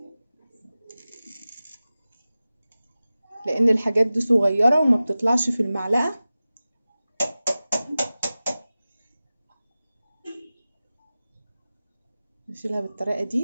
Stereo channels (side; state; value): both; inverted; correlation -0.96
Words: لان الحاجات دي صغيره وما بتطلعش في المعلقه. نشيلها بالطريقه